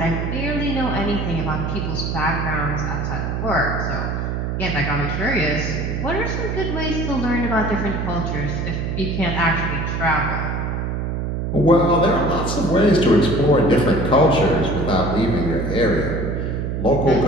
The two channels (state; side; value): noise; right; hum, 2 dB below the sound